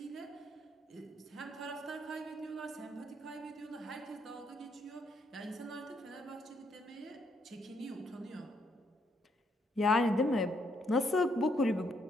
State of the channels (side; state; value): both; normal; correlation 0.73